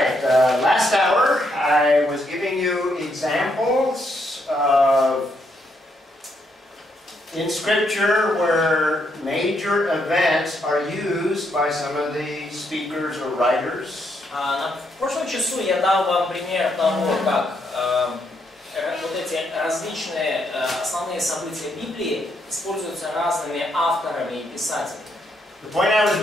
right, last hour I was giving you examples of in Scripture where major events are used by some of the speakers or writers. В прошлом часу я дал вам пример того, как вот эти различные основные события Библии используются разными авторами и писателями. The point I was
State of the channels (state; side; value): normal; both; correlation 0.76